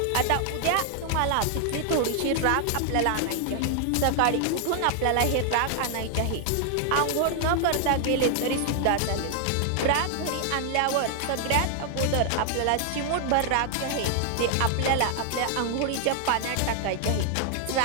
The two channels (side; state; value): both; different; correlation 0.00